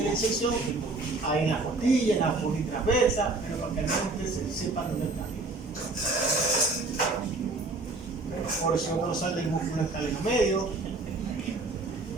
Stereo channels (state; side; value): quieter; left; 3.4 dB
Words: la inserción, ahí en la costilla, en la fosa transversa, pero para que al menos ustedes sepan dónde está. Porción dorsal del músculo escaleno medio.